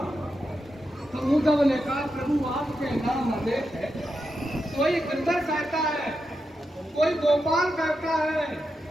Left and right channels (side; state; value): both; normal; correlation 0.87